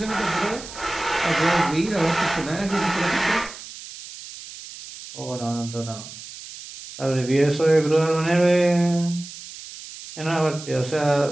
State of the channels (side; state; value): right; noise; hiss, 14 dB below the sound